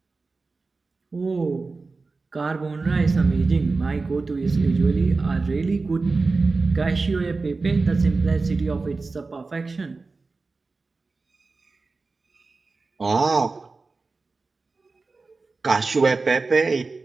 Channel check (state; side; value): quieter; left; 3.9 dB